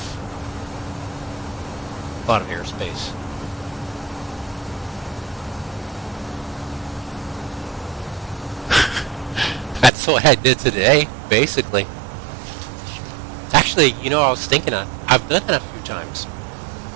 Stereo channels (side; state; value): left; drops out; at 9.9 s